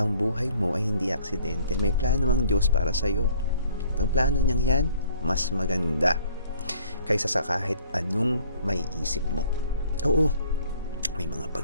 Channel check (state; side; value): inverted; both; correlation -0.57